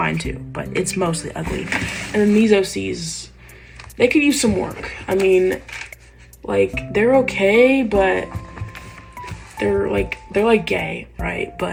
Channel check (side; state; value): both; identical; correlation 1.00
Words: too, but it's mostly ugly. And then these OCs, they could use some work. I mean, like, they're okay, but they're like gay, right?